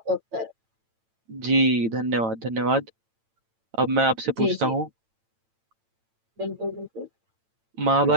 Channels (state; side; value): late; left; 8.9 ms